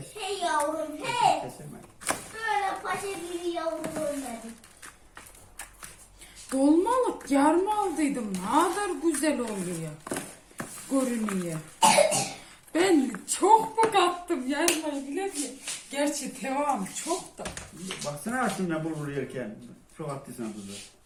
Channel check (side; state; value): both; identical; correlation 1.00